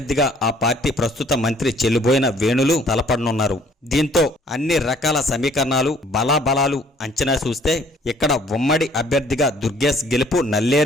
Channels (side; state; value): both; normal; correlation 0.58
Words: ఆ పార్టీ ప్రస్తుత మంత్రి చెల్లుబోయిన వేణులు తలపడనున్నారు. దీంతో అన్ని రకాల సమీకరణాలు బలాబలాలు అంచనా చూస్తే ఇక్కడ ఉమ్మడి అభ్యర్థిగా దుర్గేష్ గెలుపు